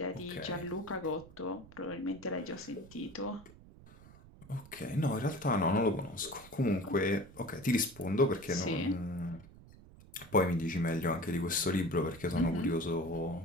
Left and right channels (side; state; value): right; noise; rumble, 20 dB below the sound